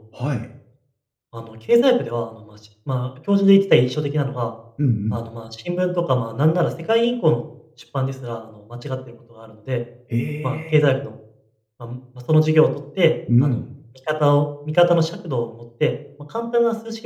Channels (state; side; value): identical; both; correlation 1.00